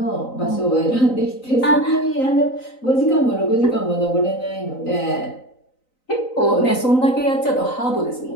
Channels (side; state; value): right; late; 3.9 ms